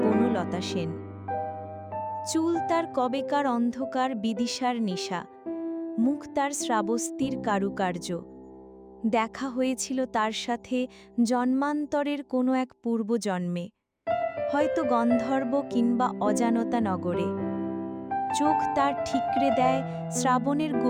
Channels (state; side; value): identical; both; correlation 1.00